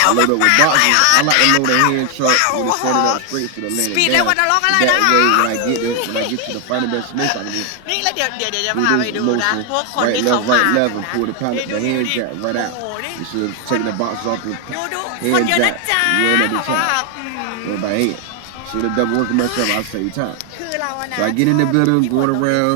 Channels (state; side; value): different; both; correlation 0.01